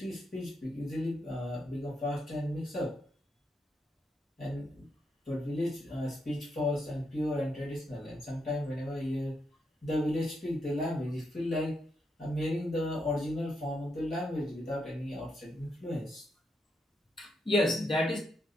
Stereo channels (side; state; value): both; normal; correlation 0.80